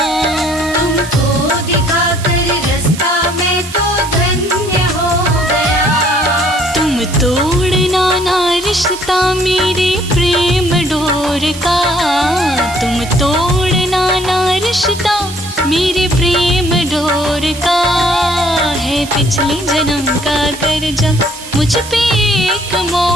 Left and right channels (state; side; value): noise; right; hiss, 13 dB below the sound